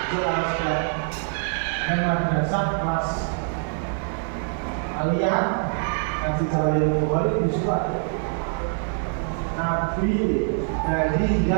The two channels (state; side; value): silent; left; 62 dB below the other